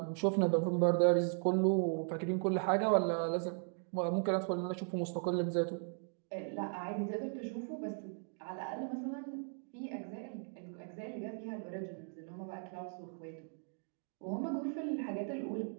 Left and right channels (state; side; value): silent; left; 53 dB below the other